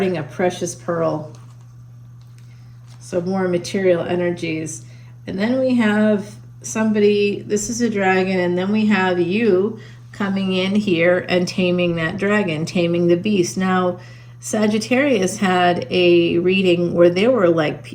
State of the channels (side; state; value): both; identical; correlation 1.00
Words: a precious pearl. So more material energies. And then we have somebody, this is a dragon, and then we have you coming in here and taming that dragon, taming the beast. Now, Sagittarius had a reading where there were